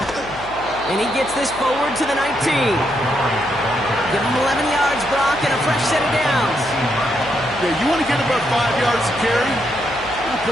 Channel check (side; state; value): left; noise; hum, 18 dB below the sound